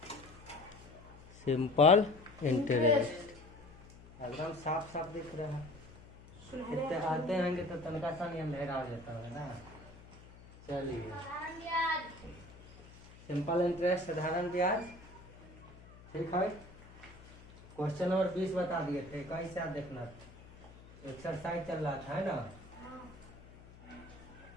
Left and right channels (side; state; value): left; noise; hum, 20 dB below the sound